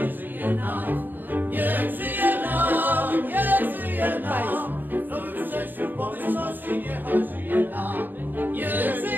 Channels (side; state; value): left; late; 0.089 ms